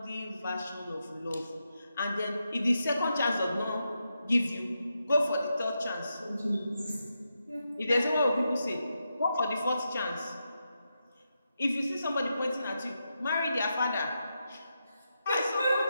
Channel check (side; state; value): both; inverted; correlation -0.86